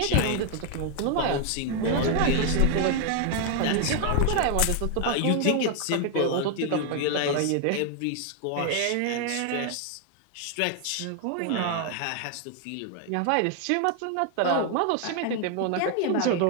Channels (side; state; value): both; different; correlation 0.00